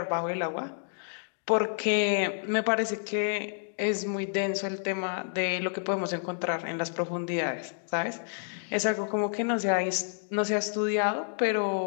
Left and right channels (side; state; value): right; silent; digital silence